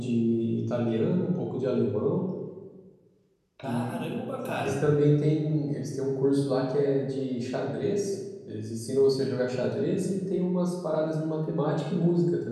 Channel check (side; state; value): both; identical; correlation 1.00